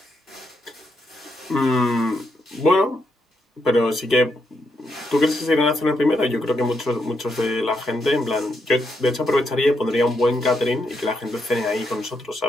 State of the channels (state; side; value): normal; both; correlation 0.80